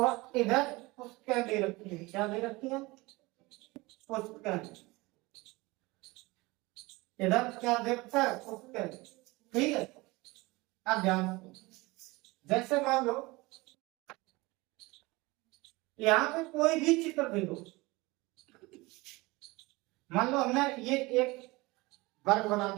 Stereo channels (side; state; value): left; quieter; 22.7 dB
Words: इधर पुस्तकें दे रखी है। क्या दे रखी है? पुस्तकें। इधर क्या दे रखा है? पुस्तकें। ठीक है, अब ध्यान, जैसे मान लो यहाँ पे कोई भी चित्र दे दो। मान लो हमने ये एक वर्ग बना